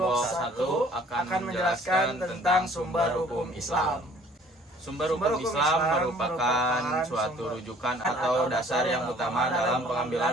1 akan menjelaskan tentang sumber hukum Islam. Sumber hukum Islam merupakan suatu rujukan atau dasar yang utama dalam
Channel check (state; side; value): normal; both; correlation 0.55